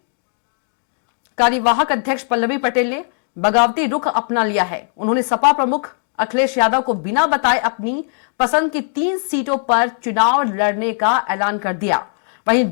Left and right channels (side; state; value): right; silent; 65 dB below the other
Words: कार्यवाहक अध्यक्ष पल्लवी पटेल ने बगावती रुख अपना लिया है। उन्होंने सपा प्रमुख अखिलेश यादव को बिना बताए अपनी पसंद की 3 सीटों पर चुनाव लड़ने का ऐलान कर दिया। वहीं